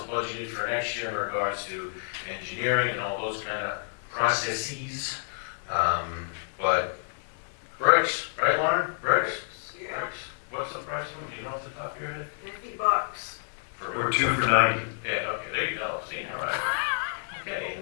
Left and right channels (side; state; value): right; silent; 59 dB below the other